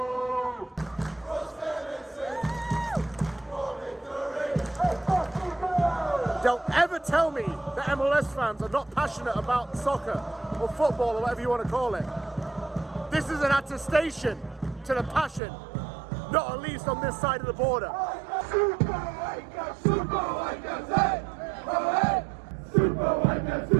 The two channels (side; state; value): left; drops out; at 15.4 s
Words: Don't ever tell me that MLS fans are not passionate about soccer or football or whatever you want to call it. This is an attestation to the passion, not at least on this side of the border. Super White Caps, hey! Oh, hey! Super White Caps,